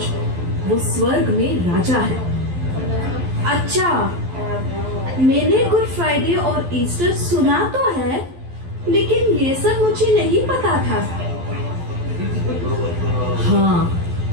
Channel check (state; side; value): late; left; 12 ms